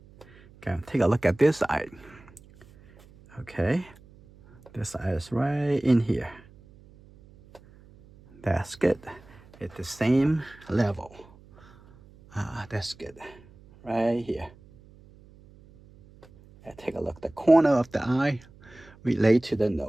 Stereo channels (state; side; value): noise; right; hum, 25 dB below the sound